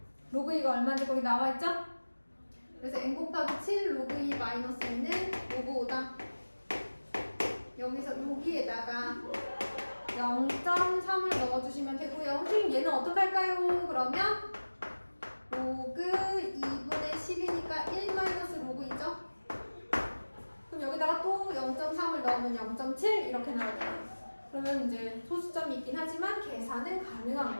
로그 2가 얼마인지 거기 나와 있죠? 그래서 n 곱하기 7 로그 2 마이너스 2는 로그 5다. 여기서 여기에다가 0.3을 넣어주시면 되고요. 선생님 얘는 어떻게 할까요? 그러면 로그 2분의 10이니까 1 마이너스 로그 2죠? 그럼 여기다가 또 0.3을 넣으면 0.7 이렇게 나오거든요. 그러면 이제 소수점이 있긴 하지만 계산은 가능한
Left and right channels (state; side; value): inverted; both; correlation -1.00